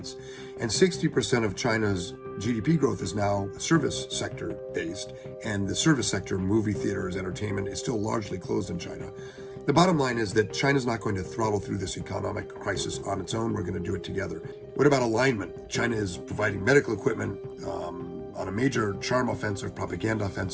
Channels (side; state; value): both; identical; correlation 1.00